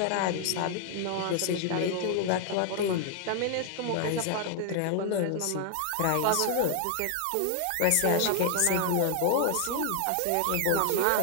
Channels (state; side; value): different; both; correlation 0.00